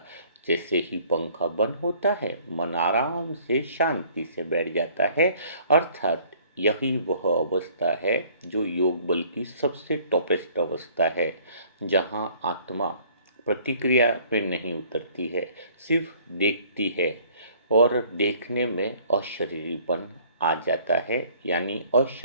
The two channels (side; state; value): both; inverted; correlation -0.57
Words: जैसे ही पंखा बंद होता है, मन आराम से शांति से बैठ जाता है। अर्थात यही वह अवस्था है जो योग बल की सबसे टॉपेस्ट अवस्था है, जहाँ आत्मा प्रतिक्रिया पे नहीं उतरती है, सिर्फ देखती है और देखने में अशरीरीपन आ जाता है। यानी